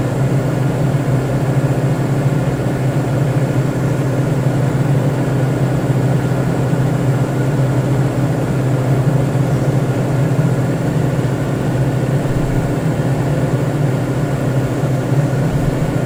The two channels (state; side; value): identical; both; correlation 1.00